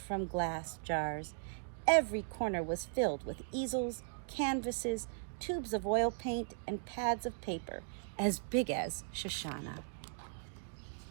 glass jars. Every corner was filled with easels, canvases, tubes of oil paint, and pads of paper as big as Shoshana.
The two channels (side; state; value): left; silent; digital silence